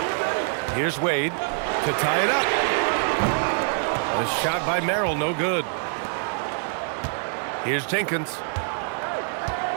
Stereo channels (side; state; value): left; silent; 60 dB below the other